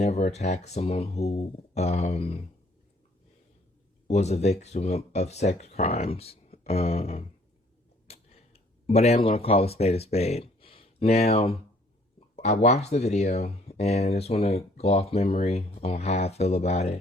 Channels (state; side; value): normal; both; correlation 0.61